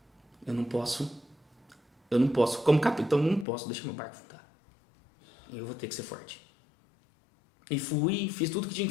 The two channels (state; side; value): drops out; right; at 3.5 s